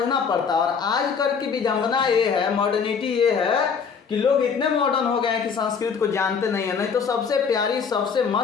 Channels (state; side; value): quieter; right; 6.1 dB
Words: पड़ता है। और आजकल की विडंबना ये है, मॉडर्निटी ये है कि लोग इतने मॉडर्न हो गए हैं कि संस्कृत को जानते नहीं है। नहीं तो सबसे प्यारी, सबसे